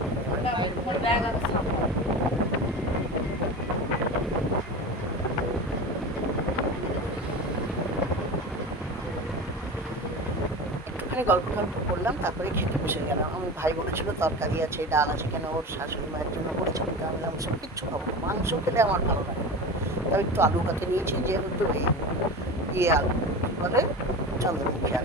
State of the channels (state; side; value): normal; both; correlation 0.29